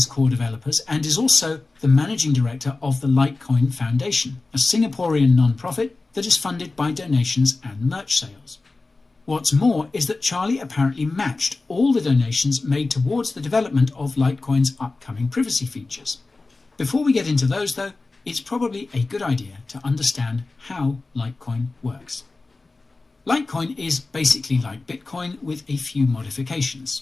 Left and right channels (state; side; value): quieter; right; 3.5 dB